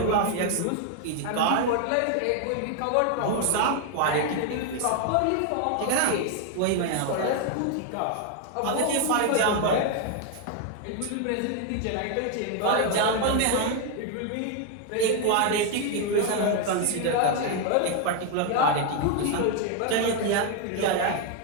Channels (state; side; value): different; both; correlation 0.01